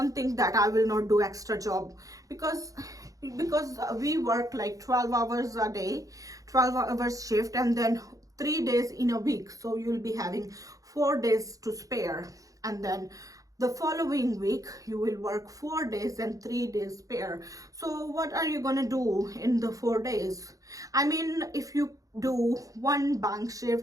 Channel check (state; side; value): late; left; 0.17 ms